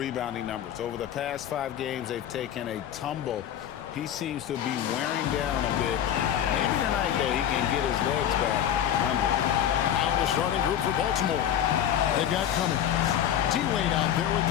numbers. Over the past 5 games, they've taken a tumble. He seems to be wearing down a bit. Maybe tonight, though, he can get his legs back under. Now the starting group for Baltimore. They've got Cummings. D-Wade out there with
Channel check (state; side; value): quieter; right; 10.2 dB